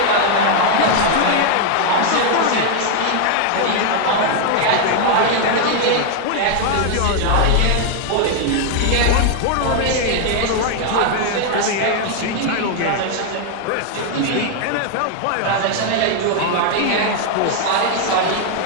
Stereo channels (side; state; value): both; different; correlation 0.00